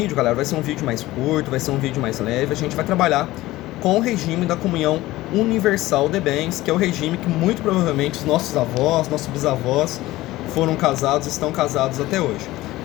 galera, vai ser um vídeo mais curto, vai ser um vídeo mais leve, a gente vai trabalhar com o regime da comunhão universal de bens, que é o regime que muito provavelmente os nossos avós, nossos bisavós foram casados, estão casados até hoje.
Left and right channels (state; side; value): quieter; right; 17.4 dB